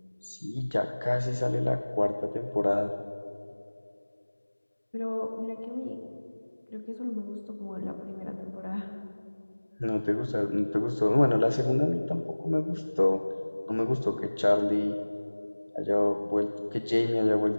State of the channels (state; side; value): inverted; both; correlation -1.00